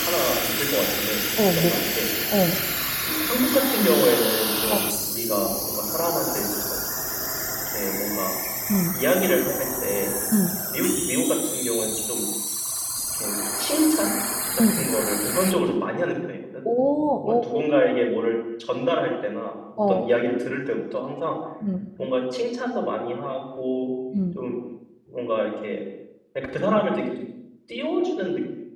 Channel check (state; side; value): identical; both; correlation 1.00